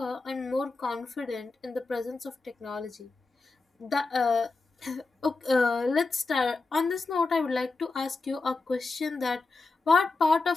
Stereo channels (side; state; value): right; quieter; 3.7 dB